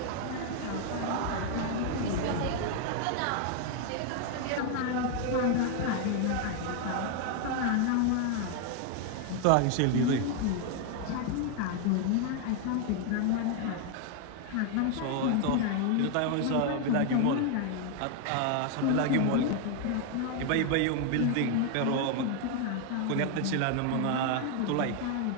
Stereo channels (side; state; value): both; different; correlation 0.01